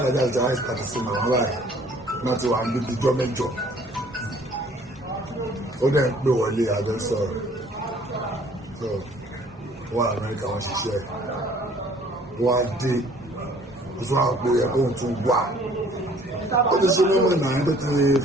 ìjọba ìpàdé sí màmá báyìí náà ti wà níbi ìjọ mẹ́jọ ó dẹ̀ ń pè wọlé àjọ sọ̀rọ̀ so wọ́n Amẹ́ríkà wọ́n ṣiṣẹ́ wọ́n á dé ó tún àwọn òpó yẹ kóhun tún wà ó ti ṣe mímọ̀ náà tó ti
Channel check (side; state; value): both; normal; correlation 0.56